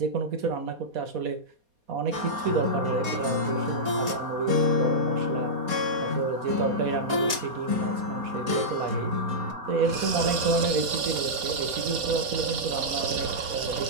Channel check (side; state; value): left; late; 4.2 ms